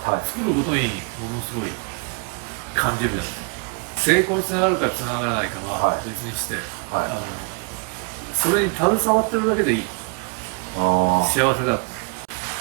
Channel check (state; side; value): quieter; left; 35.4 dB